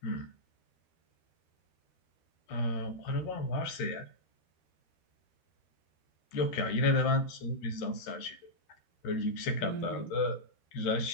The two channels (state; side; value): late; right; 13 ms